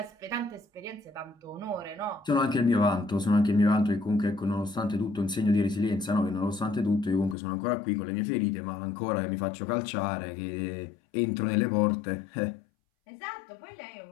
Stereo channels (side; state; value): right; drops out; at 7.4 s